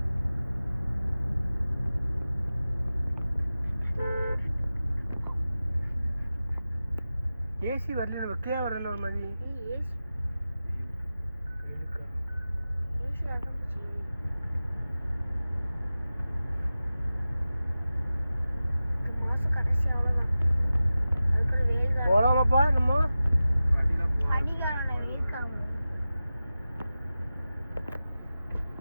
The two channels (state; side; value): inverted; both; correlation -0.95